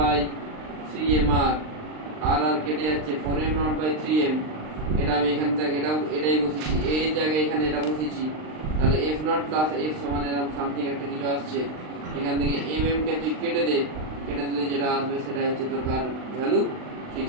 3mr। আর আর কেটে যাচ্ছে 4m নট বাই 3m। এটা আমি এখান থেকে এটাই বসেছি, এর জায়গায় এখানে এটা বসেছি। তাহলে f নট প্লাস f সমান এরকম সামথিং একটা কিছু আসছে। এখান থেকে mm কে তুই কেটে দিলে যেটা আসবে সেটা হচ্ছে তোর কার ভ্যালু?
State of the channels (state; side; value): late; left; 39 ms